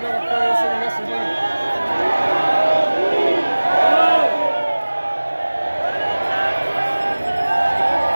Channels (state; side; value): inverted; both; correlation -1.00